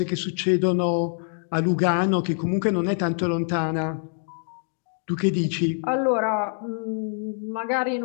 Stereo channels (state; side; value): silent; right; digital silence